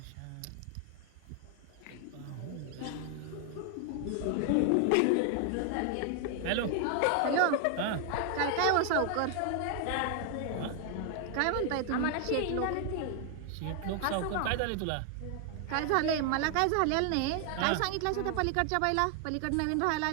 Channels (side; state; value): both; different; correlation 0.00